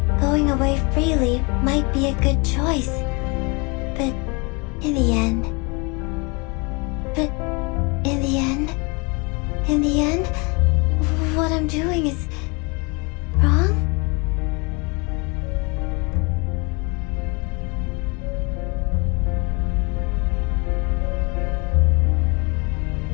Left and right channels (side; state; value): right; quieter; 30.1 dB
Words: going away freely might be a good choice. But in the end, what I'm doing is wrong?